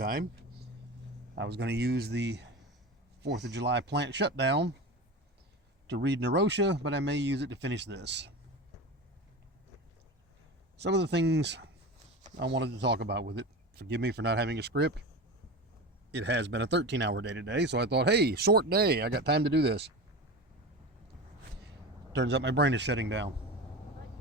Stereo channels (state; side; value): normal; both; correlation 0.28